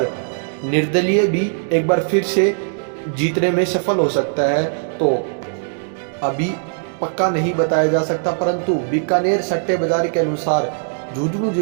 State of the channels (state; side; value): silent; left; digital silence